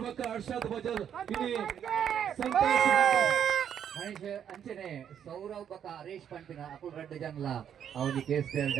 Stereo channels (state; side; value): quieter; left; 8.9 dB